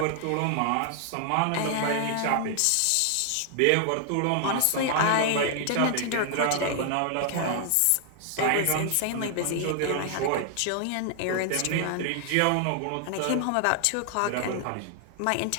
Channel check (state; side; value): different; both; correlation 0.00